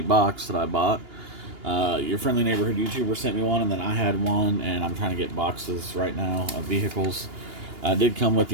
box that I bought. Your friendly neighborhood YouTuber sent me one, and then I had one, and I'm trying to get boxes right now of vehicles. I did come with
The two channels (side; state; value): left; late; 2.8 ms